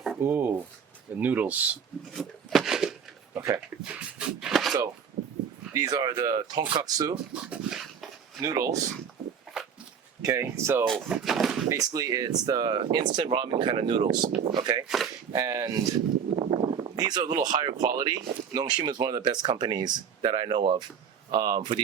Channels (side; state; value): left; quieter; 7.2 dB